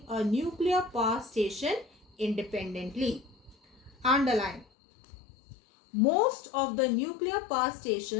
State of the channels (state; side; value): drops out; right; at 4.7 s